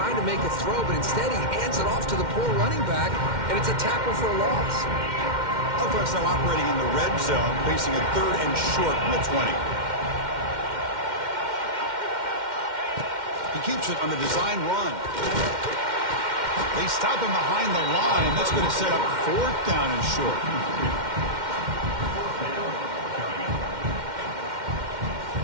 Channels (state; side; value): late; left; 2.1 ms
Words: to make a throw, but instead he hands it off to the poor running back, and it's a tackle for a loss. Offense now operating in the red zone, facing a 3rd and short from the 20. He keeps it on the design run. They stop him behind the line. That's going to set up 4th down and short.